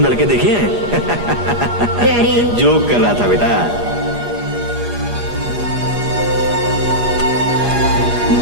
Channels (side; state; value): left; late; 8.4 ms